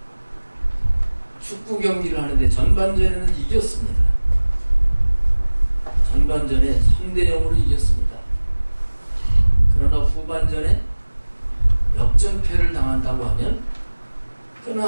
축구 경기를 하는데 전반전에는 이겼습니다. 전반전에 3대 0으로 이겼습니다. 그러나 후반전에 역전패를 당한다고 하면 그건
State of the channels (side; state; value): both; inverted; correlation -1.00